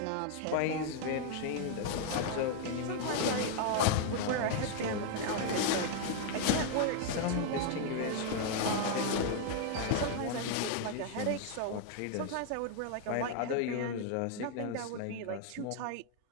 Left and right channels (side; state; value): both; different; correlation 0.00